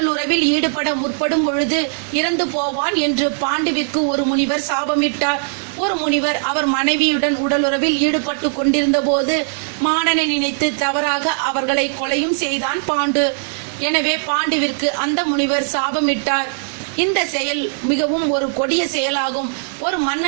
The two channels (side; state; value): left; silent; digital silence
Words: உறவில் ஈடுபட முற்படும் பொழுது இறந்து போவான் என்று பாண்டுவிற்கு ஒரு முனிவர் சாபமிட்டார். ஒரு முனிவர் அவர் மனைவியுடன் உடலுறவில் ஈடுபட்டு கொண்டிருந்த போது மானனை நினைத்து தவறாக அவர்களை கொலையும் செய்தான் பாண்டு. எனவே பாண்டுவிற்கு அந்த முனிவர் சாபமிட்டார். இந்த செயல் மிகவும் ஒரு கொடிய செயலாகும். ஒரு